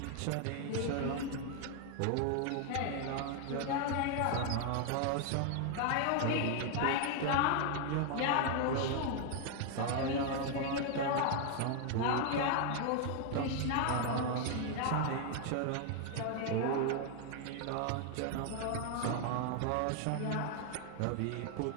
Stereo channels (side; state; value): both; different; correlation 0.00